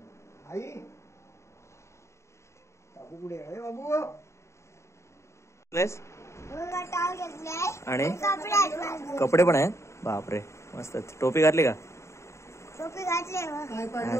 आई बाबू कुठे आहे? बाबू आणि कपडे पण आहेत. बापरे, मस्त. टोपी घातली का? टोपी घातली.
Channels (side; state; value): right; late; 0.14 ms